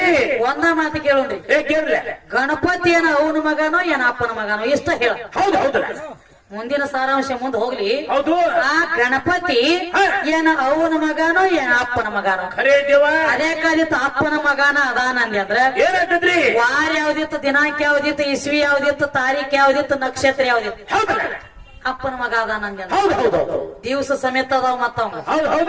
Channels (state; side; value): identical; both; correlation 1.00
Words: ಒಂದ ಮಾತು ಕೇಳೋಣ್ರಿ. ಗಣಪತಿ ಏನ ಅವನ ಮಗನೋ ಏನ ಅಪ್ಪನ ಮಗನೋ ಇಷ್ಟ ಹೇಳ. ಹೌದು ಹೌದು. ಮುಂದಿನ ಸಾರಾಂಶ ಮುಂದೆ ಹೋಗ್ಲಿ. ಹೌದು. ಆ ಗಣಪತಿ ಏನ ಅವನ ಮಗನೋ ಏನ ಅಪ್ಪನ ಮಗನೋ? ಖರೇ ದೇವ. ಅದೇ ಕಾಲಿತ್ತು ಅಪ್ಪನ ಮಗನ ಅದಾನ ಅಂದ್ರ ಏನಾಗ್ತದ್ರಿ? ವಾರ ಯಾವ್ದಿತ್ತು, ದಿನಾಂಕ ಯಾವ್ದಿತ್ತು, ಇಸ್ವಿ ಯಾವ್ದಿತ್ತು, ತಾರೀಖ್ ಯಾವ್ದಿತ್ತು, ನಕ್ಷತ್ರ ಯಾವ್ದಿತ್ತು? ಹೌದು. ಅಪ್ಪನ ಮಗ ಅದಾನ ಅಂದ. ಹೌದು ಹೌದು. ದಿವಸ ಸಮೇತ ಅದಾವ ಮತ್ತವಂಗ. ಹೌದು